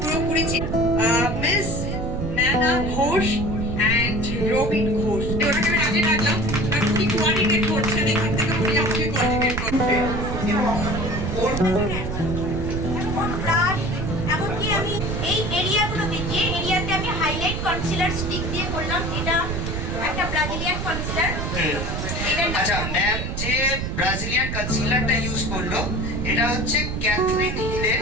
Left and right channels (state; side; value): noise; right; rumble, 3 dB below the sound